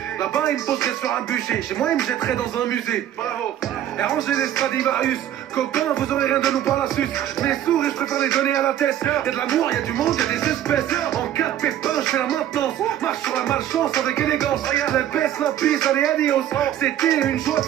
Là-bas il me poserait sur un budget, chez moi il me jetterait dans un musée. Bravo. Et ranger les Stradivarius, copains vous aurez rien de nous par la suce. Mes sourds et je préfère les donner à la tête. Y'a de l'amour, y'a du monde, y'a des espèces. En cas de pépin je fais la maintenance, marche sur la malchance avec élégance. La baisse, la pisse, allez adios. C'était une joie de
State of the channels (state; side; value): quieter; left; 11.4 dB